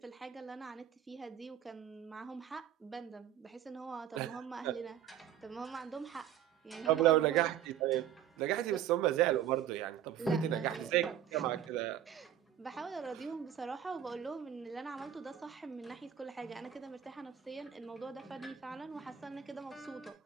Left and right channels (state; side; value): quieter; left; 10.2 dB